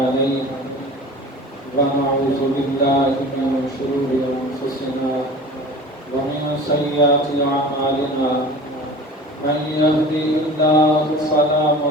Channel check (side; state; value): both; normal; correlation 0.39